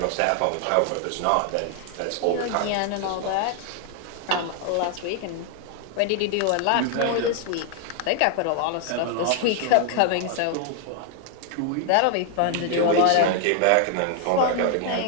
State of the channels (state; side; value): different; both; correlation 0.00